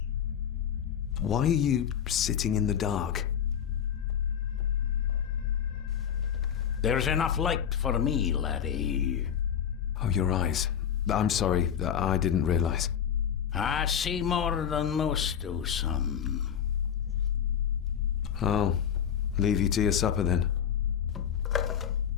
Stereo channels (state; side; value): quieter; right; 8.6 dB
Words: Why are you sitting in the dark? There's enough light for me, laddie. Oh, your eyes. I'm sorry, I didn't realize. I see more than most do, son. I'll leave you to your supper then.